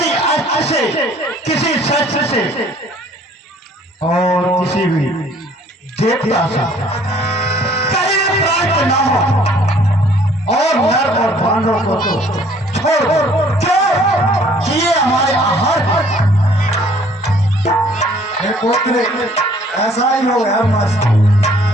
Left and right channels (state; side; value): normal; both; correlation 0.58